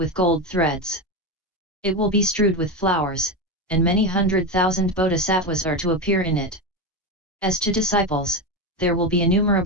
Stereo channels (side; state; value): both; normal; correlation 0.16